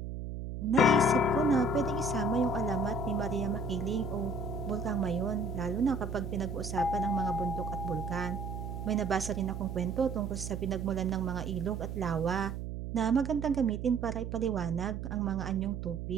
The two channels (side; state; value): right; noise; hum, 6 dB below the sound